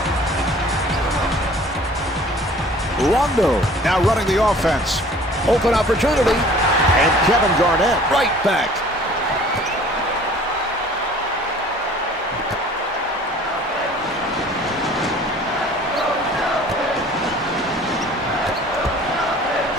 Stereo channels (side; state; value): both; normal; correlation 0.50